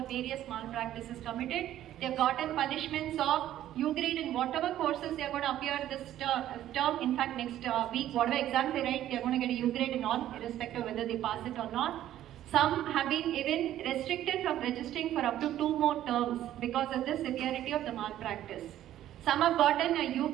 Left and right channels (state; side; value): quieter; left; 12.5 dB